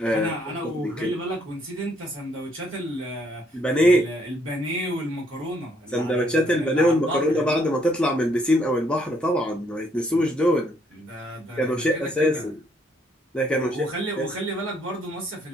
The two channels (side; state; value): both; normal; correlation 0.69